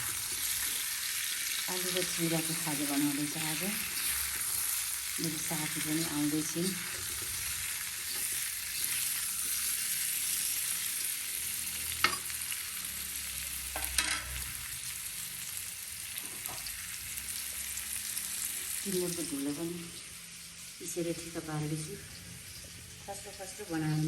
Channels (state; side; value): identical; both; correlation 1.00